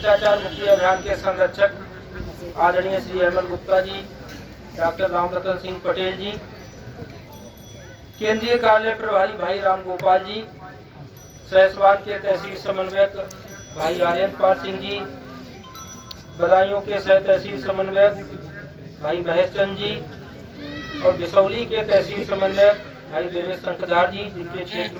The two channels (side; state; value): both; identical; correlation 1.00